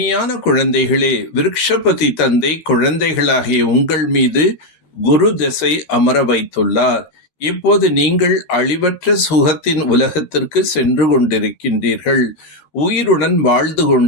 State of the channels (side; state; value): right; late; 13 ms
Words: குழந்தைகளே, விருக்ஷபதி தந்தை குழந்தைகளாகிய உங்கள் மீது குரு திசை அமர வைத்துள்ளார். இப்போது நீங்கள் அழிவற்ற சுகத்தின் உலகத்திற்கு சென்று கொண்டிருக்கின்றீர்கள். உயிருடன் வாழ்ந்து